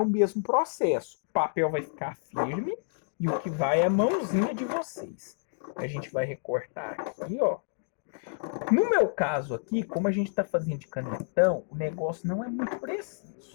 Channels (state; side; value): silent; right; digital silence